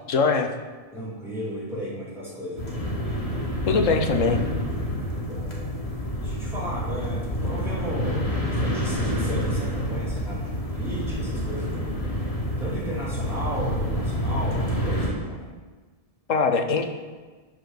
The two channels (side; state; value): right; late; 1.7 ms